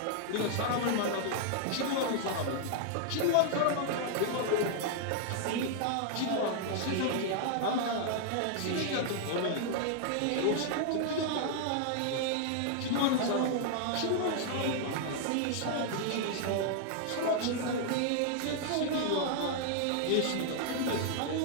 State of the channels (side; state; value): both; different; correlation -0.01